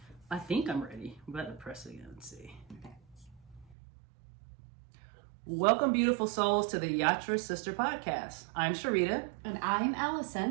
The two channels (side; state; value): left; drops out; at 3.8 s